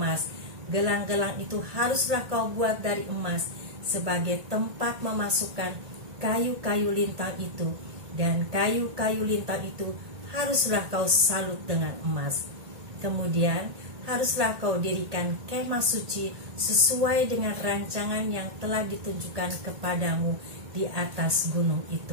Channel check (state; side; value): late; left; 1.8 ms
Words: Gelang-gelang itu haruslah kau buat dari emas sebagai tempat memasukkan kayu-kayu lintang itu, dan kayu-kayu lintang itu haruslah kau salut dengan emas. Kemudian haruslah kau dirikan kemah suci sesuai dengan rancangan yang telah ditunjukkan kepadamu di atas gunung